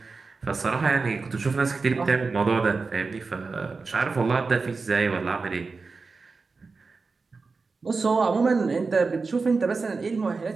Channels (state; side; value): quieter; left; 4.3 dB